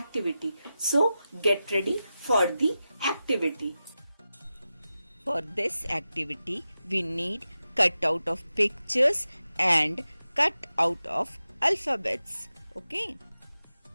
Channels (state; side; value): inverted; both; correlation -0.93